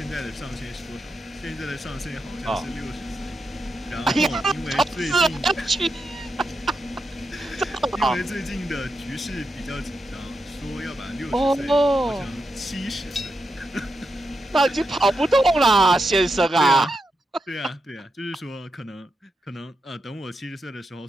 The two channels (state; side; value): normal; both; correlation 0.86